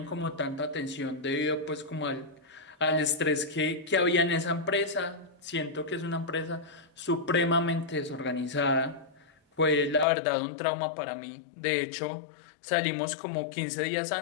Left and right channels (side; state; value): right; drops out; at 10.1 s